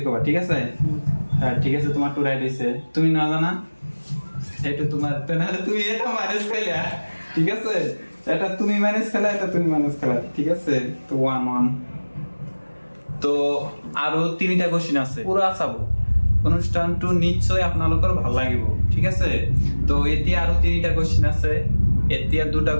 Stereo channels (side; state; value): both; inverted; correlation -1.00